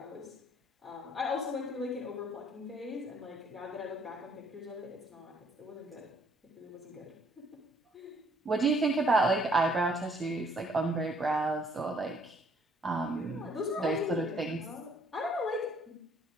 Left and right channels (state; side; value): normal; both; correlation 0.64